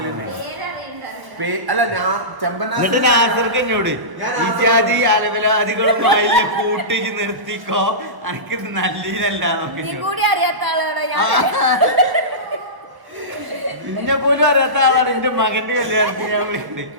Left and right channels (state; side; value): late; left; 1.1 ms